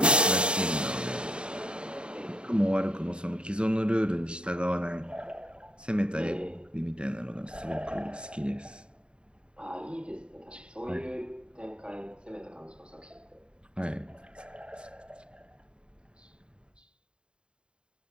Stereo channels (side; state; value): left; late; 0.052 ms